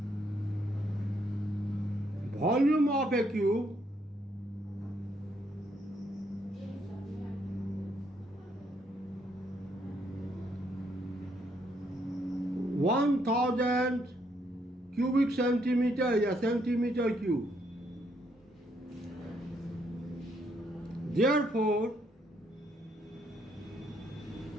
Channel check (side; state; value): both; normal; correlation 0.73